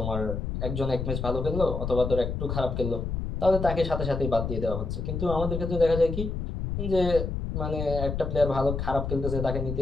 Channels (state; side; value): noise; left; rumble, 3 dB below the sound